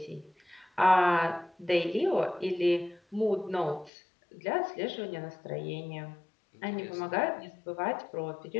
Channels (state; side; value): drops out; right; at 3.9 s